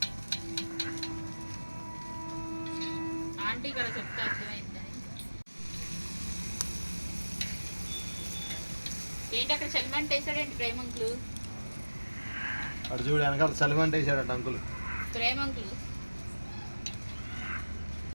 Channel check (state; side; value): inverted; both; correlation -1.00